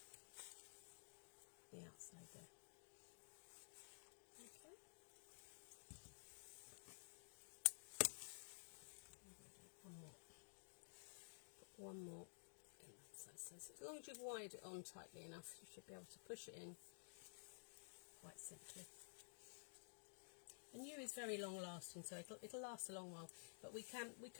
the outside there. Okay. One more. Put one more in that side. So as long as you've wired it on tightly enough, you should be able to push it in quite simply. And yew is very long lasting, so it'll last a long while. But we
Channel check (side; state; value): right; silent; digital silence